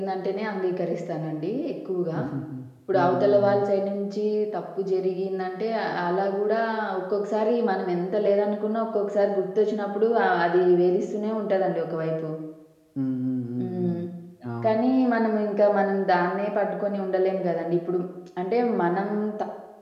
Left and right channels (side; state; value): both; identical; correlation 1.00